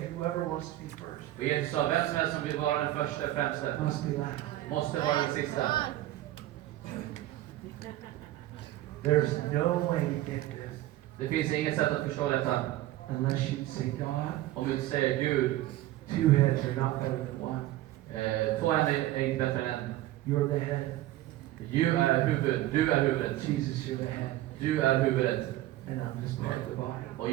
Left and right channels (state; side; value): quieter; left; 15.2 dB